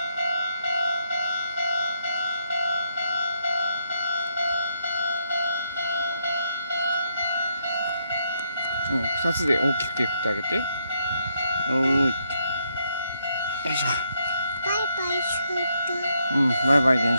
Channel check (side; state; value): both; inverted; correlation -0.76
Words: うん、二つで大きく手振ってあげて。おーい。よいしょ。バイバイする。うん、バイバイ電